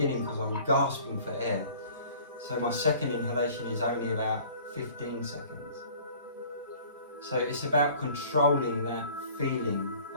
because I'm gasping for air. So my second inhalation is only about 15 seconds. So it's about controlling that feeling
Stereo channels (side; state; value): both; inverted; correlation -0.49